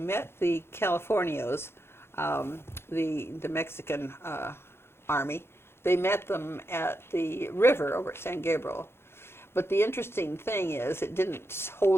the Californios, the Mexican army. They met them at the river over at San Gabriel. But the interesting thing is it didn't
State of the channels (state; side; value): late; right; 0.12 ms